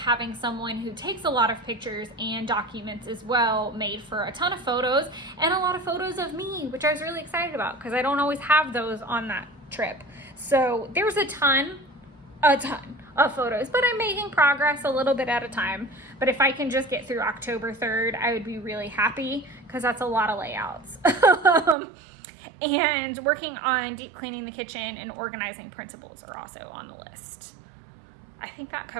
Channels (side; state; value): left; drops out; at 21.8 s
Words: someone who takes a lot of pictures and documents as well made for a ton of photos, and a lot of photos of me, which I was really excited about because I don't always have those on that trip. So there's a ton of photos, but I'm making progress a little bit at a time. But if I can just get through October 3rd, I would be really happy, because that's a lot of layouts. And working on deep cleaning the kitchen and organizing principles are also on the list. I think that